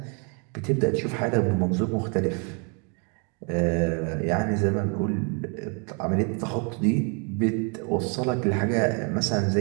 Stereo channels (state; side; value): quieter; left; 36.5 dB